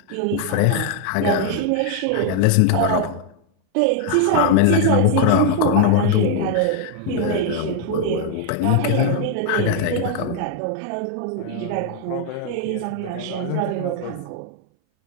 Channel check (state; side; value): different; both; correlation 0.00